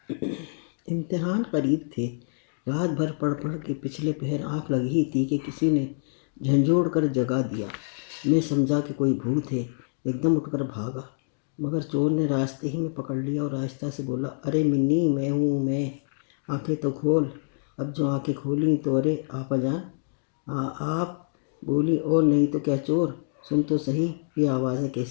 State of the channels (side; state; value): right; silent; digital silence